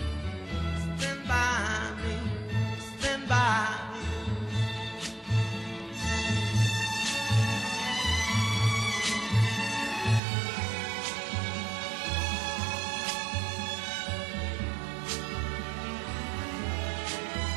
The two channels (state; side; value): drops out; left; at 10.2 s